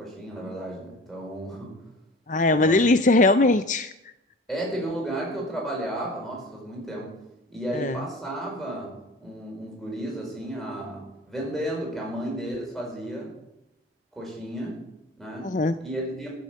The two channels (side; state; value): both; normal; correlation 0.41